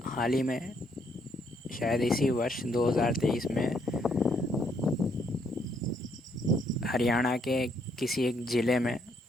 हाल ही में, शायद इसी वर्ष 2023 में, हरियाणा के किसी एक ज़िले में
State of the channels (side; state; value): both; normal; correlation 0.72